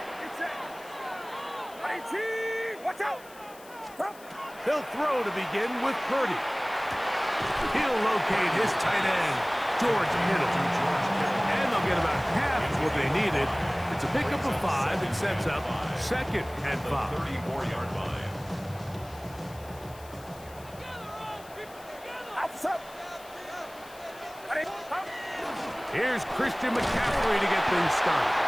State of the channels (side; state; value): left; noise; hiss, 22 dB below the sound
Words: get set. 18, watch out. He'll throw to begin with Purdy. He'll locate his tight end, George Kittle. And they'll get about half of what they needed. It's a pickup of 5 and sets up 2nd and 5. 34-yard line. Here's Christian McCaffrey to get things started.